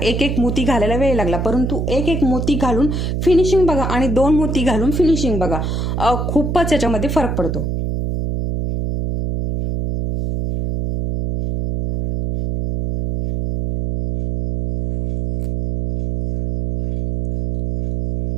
एक एक मोती घालायला वेळ लागला, परंतु एक एक मोती घालून फिनिशिंग बघा आणि 2 मोती घालून फिनिशिंग बघा, खूपच याच्यामध्ये फरक पडतो।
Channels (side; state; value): right; noise; hum, 2 dB below the sound